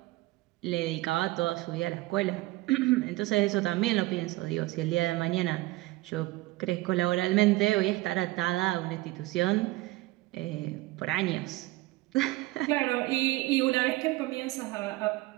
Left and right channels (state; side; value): quieter; left; 19.7 dB